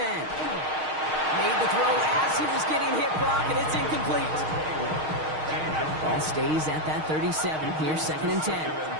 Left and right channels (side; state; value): left; late; 6.4 ms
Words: Made the throw as he was getting hit, Brock, and it's incomplete. Ball stays at that 37. Here's 2nd and 10.